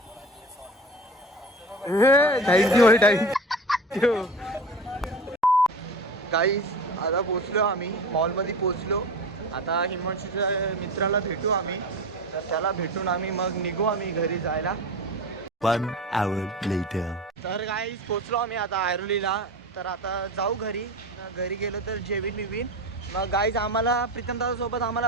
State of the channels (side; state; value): both; normal; correlation 0.30